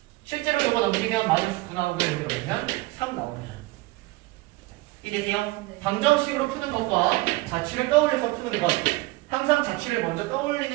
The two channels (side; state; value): left; quieter; 21.1 dB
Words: 실제로 이거 넘기면 마이너스 9 나오고 이거 넣으면 3 나옵니다. 이해되세요? 네. 방정식으로 푸는 것과 자취를 떠올려서 푸는 것 항상 자취를 먼저